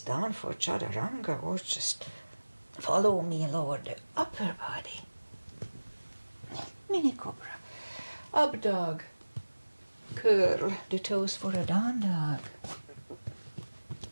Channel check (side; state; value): both; inverted; correlation -1.00